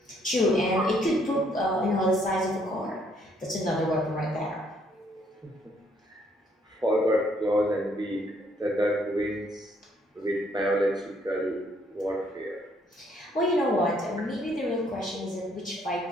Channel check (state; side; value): normal; both; correlation 0.68